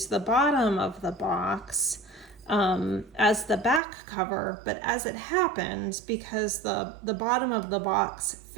the bottom of the box as the back cover, but as it happened, because the bottom of the box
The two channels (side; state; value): left; drops out; at 3.8 s